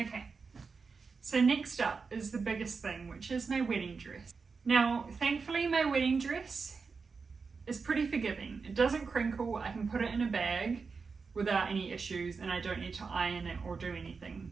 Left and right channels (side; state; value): left; quieter; 4.9 dB